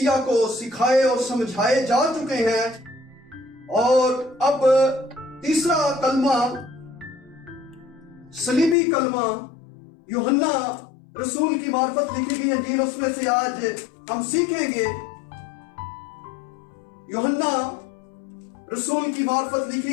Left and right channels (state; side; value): drops out; right; at 8.8 s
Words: کو سکھائے اور سمجھائے جا چکے ہیں، اور اب تیسرا کلمہ صلیبی کلمہ یوحنا رسول کی معرفت لکھی گئی انجیل، اس میں سے آج ہم سیکھیں گے۔ یوحنا رسول کی معرفت